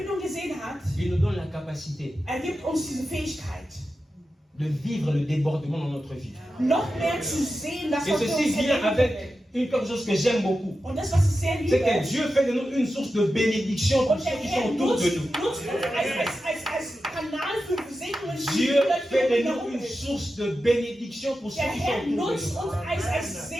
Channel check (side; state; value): both; normal; correlation 0.91